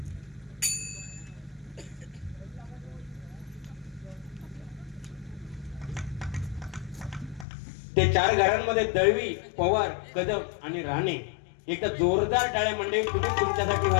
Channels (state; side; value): drops out; right; at 7.5 s